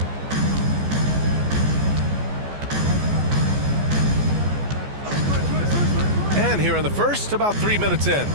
And here in the first, about 3 minutes in.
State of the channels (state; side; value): late; left; 14 ms